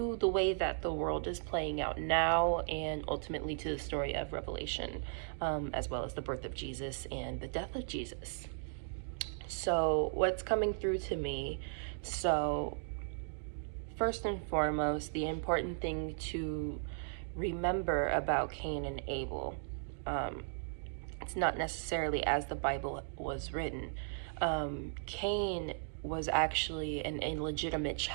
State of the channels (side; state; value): left; silent; digital silence